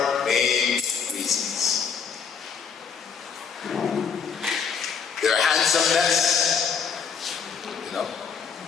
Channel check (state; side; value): quieter; right; 6.5 dB